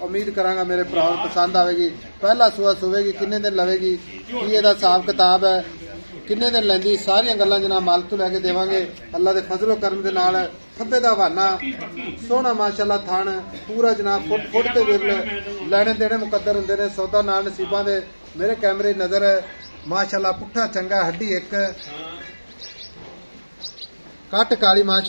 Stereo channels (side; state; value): both; inverted; correlation -1.00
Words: उम्मीद करांगा मेरे भरावां नूं पसंद आवेगी। पहला सूआ सुवेगी, किन्ने दिन लवेगी, की इहदा हिसाब किताब है, किन्ने दिन लैंदी, सारियां गल्लां जनाब मालिक तो लैके देवांगे। अल्लाह दे फजलो करम दे नाल खब्बे दा हवाना सोहना माशाल्लाह थान पूरा जनाब फुट फुट ते विरल लैने देने मुकद्दर हुंदे ने। सौदा नाल नसीबां दे मेरे कैमरे नजर माशाल्लाह पुट्ठा चंगा हड्डी एक कट काली